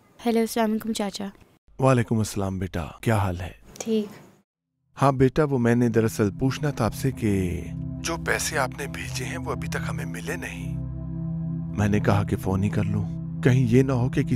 हेलो, अस्सलाम वालेकुम चाचा। वालेकुम अस्सलाम बेटा, क्या हाल है? ठीक। हाँ बेटा, वो मैंने दरअसल पूछना था आपसे कि जो पैसे आपने भेजे हैं वो अभी तक हमें मिले नहीं। मैंने कहा कि फोन ही कर लूं, कहीं ये ना हो कि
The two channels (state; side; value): identical; both; correlation 1.00